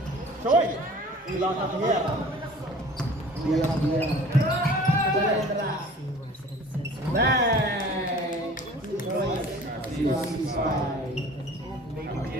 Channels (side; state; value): both; normal; correlation 0.46